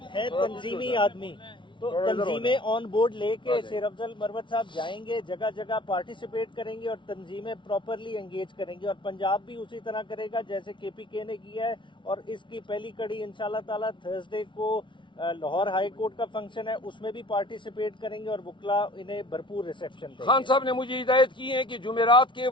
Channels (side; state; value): right; late; 0.24 ms